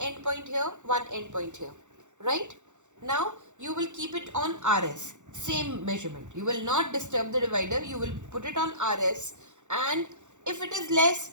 point here, one end point here. Right? Now you will keep it on RS. Same measurement. You will not disturb the divider. You will put it on RS, and if it is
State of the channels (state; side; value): late; left; 0.84 ms